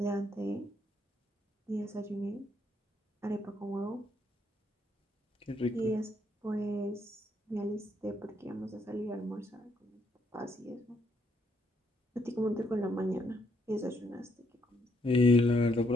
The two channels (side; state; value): both; normal; correlation 0.74